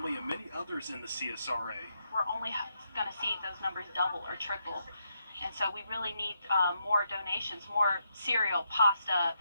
and many others in the CSRA. We're only going to see those numbers double or triple. And so we really need more donations, more cereal, pasta,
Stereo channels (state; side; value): inverted; both; correlation -0.80